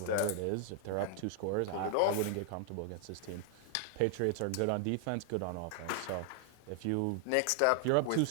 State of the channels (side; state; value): both; different; correlation 0.00